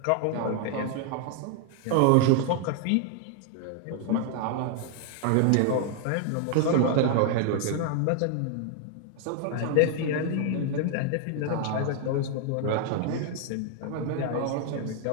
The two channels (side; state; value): both; different; correlation 0.00